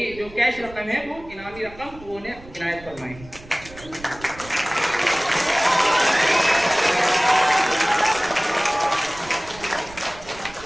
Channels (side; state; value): right; noise; rumble, 19 dB below the sound